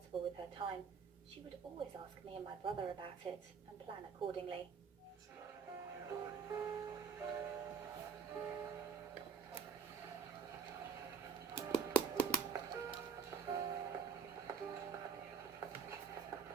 with her time. She would always ask me and my brother about it and plan accordingly.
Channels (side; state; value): left; quieter; 6.3 dB